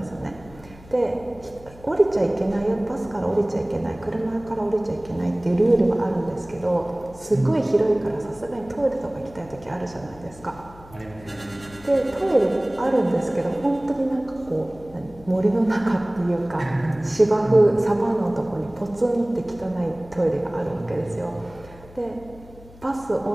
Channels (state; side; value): noise; left; hum, 21 dB below the sound